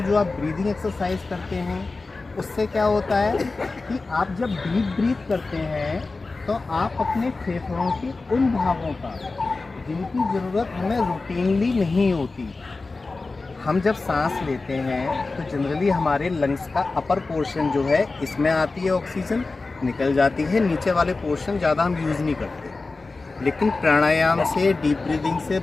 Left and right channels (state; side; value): quieter; right; 3.7 dB